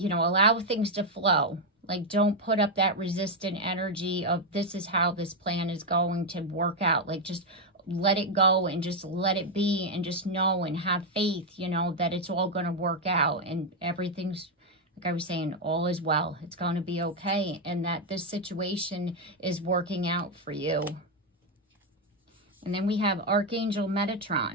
know, allow things to flow. Like, don't put up that resistant energy of this is how this plan is going to work out. Like, just let it go and just let it be, and just know and have faith, you know, that it's all going to work out, and everything's, like I was saying, all is well. It's going to be okay, and that this situation is working out for you. And then we have Archangel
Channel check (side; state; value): both; normal; correlation 0.02